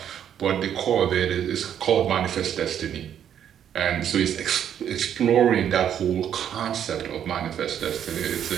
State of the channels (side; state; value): left; quieter; 9.4 dB